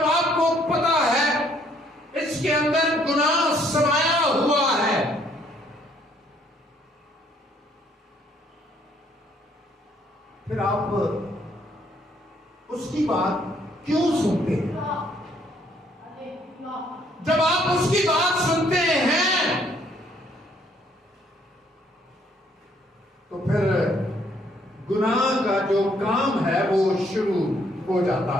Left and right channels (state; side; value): normal; both; correlation 0.66